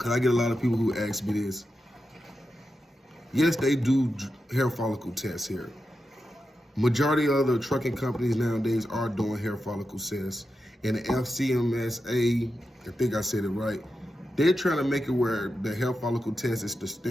I get a lot of people who ask me this. Yes, they do hair follicle tests here. Majority of the trucking companies nowadays are doing hair follicle tests. And the FCMSA, I think I said it right, they're trying to make it where the hair follicle test is the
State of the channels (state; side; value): normal; both; correlation 0.89